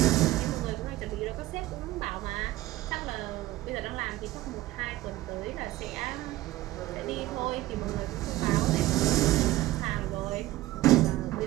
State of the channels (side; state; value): left; quieter; 16.7 dB